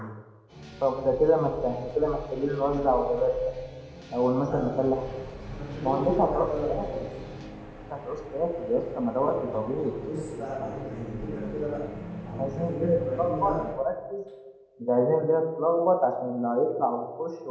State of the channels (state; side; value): identical; both; correlation 1.00